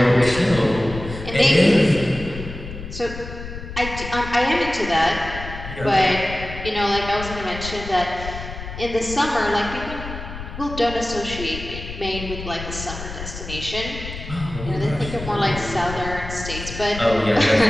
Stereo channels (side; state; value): left; noise; rumble, 10 dB below the sound